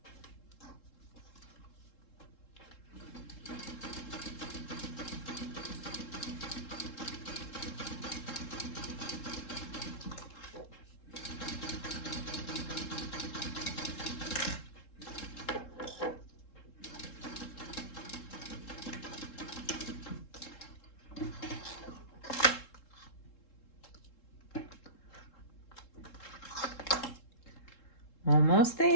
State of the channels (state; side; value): late; right; 3.7 ms